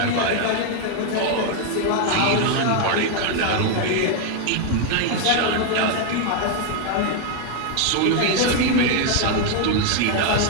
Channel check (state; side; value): different; both; correlation 0.01